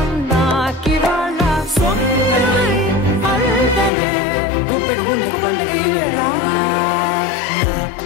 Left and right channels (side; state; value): right; drops out; at 3.9 s